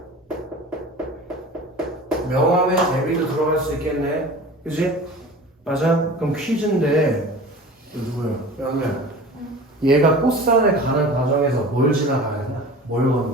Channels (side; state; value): both; normal; correlation 0.38